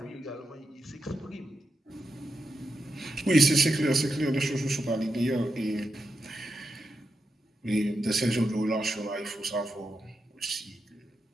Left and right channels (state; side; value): normal; both; correlation 0.87